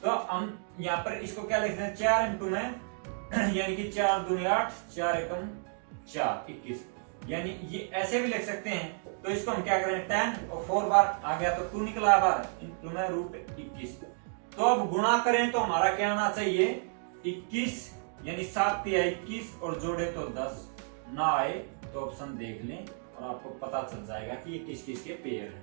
तो हम यहाँ पर इसको क्या लिखते हैं, 4 इंटू में यानी कि 4 दूनी 8, 4 एकम 4 21, यानी ये ऐसे भी लिख सकते हैं। तो इसको हम क्या करें, 10 और 4 बार आ गया तो 2 निकला बार इंटू में √21। तो अब गुणा करें तो हमारा क्या आना चाहिए 21, यानी 7 तिया 21 और जोड़े तो 10 ना आए तो ऑप्शन देख लें और आपको पता चल जाएगा कि ये किस किस के पेयर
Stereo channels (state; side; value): silent; left; 57 dB below the other